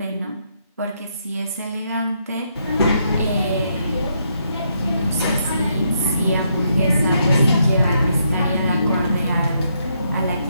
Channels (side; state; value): both; inverted; correlation -0.76